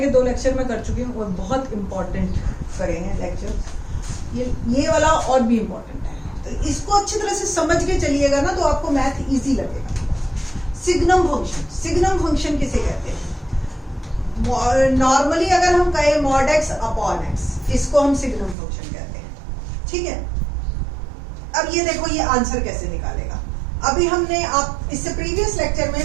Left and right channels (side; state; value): left; drops out; at 18.6 s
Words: के 2 लेक्चर मैं कर चुकी हूँ और बहुत इंपॉर्टेंट करे हैं लेक्चर। ये वाला और भी इम्पोर्टेंट है, तो इसको अच्छी तरह से समझ के चलिएगा ना तो आपको मैथ इजी लगेगा। सिग्नम फंक्शन, सिग्नम फंक्शन किसे कहते हैं? नॉर्मली अगर हम कहें मॉड एक्स अपॉन एक्स, इसको हम सिग्नम फंक्शन कहते हैं। ठीक है, अब ये देखो ये आंसर कैसे निकालेगा। अभी हमने आप इससे प्रीवियस लेक्चर में